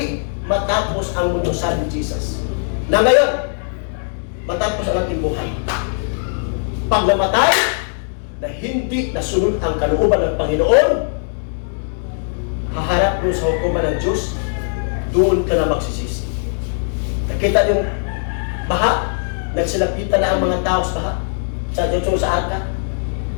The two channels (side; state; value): right; silent; digital silence